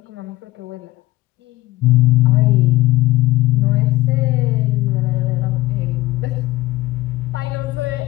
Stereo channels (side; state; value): right; quieter; 18.2 dB